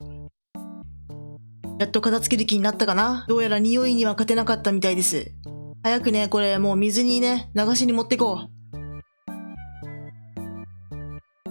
やっと片付ける気になったかな。どうやら匂いには勝てなかったみたいです。早くね、これもう水にね、流しに持ってこう。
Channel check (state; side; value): inverted; both; correlation -1.00